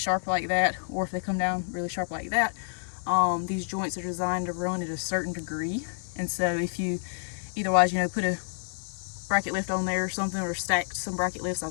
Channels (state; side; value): silent; right; digital silence